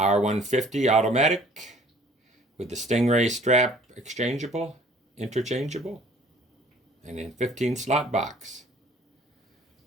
automatic with the Stingray strap interchangeable, and in 15 slot box.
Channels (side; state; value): both; normal; correlation 0.54